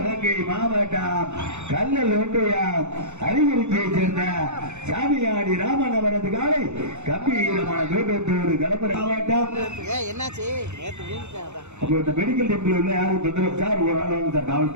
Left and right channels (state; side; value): late; left; 0.83 ms